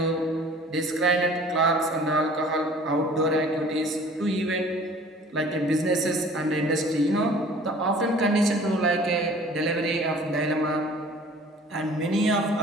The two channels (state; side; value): normal; both; correlation 0.49